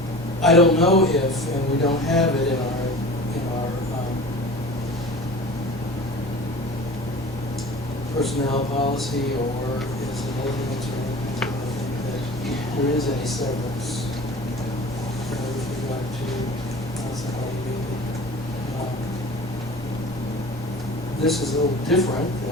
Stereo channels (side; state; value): both; normal; correlation 0.39